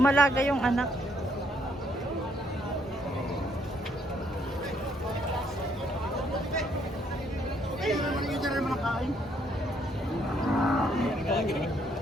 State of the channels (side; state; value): both; normal; correlation 0.70